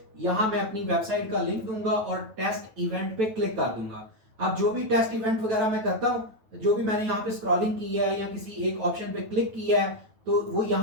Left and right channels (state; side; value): late; left; 9.1 ms